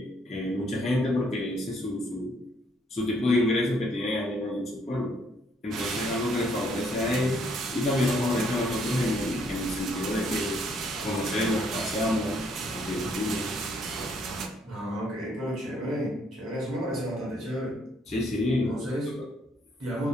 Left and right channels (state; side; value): normal; both; correlation 0.68